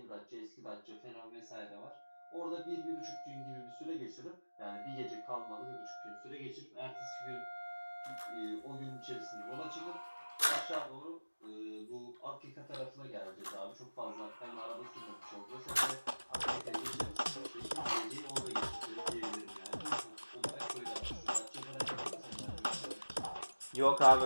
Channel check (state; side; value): inverted; both; correlation -1.00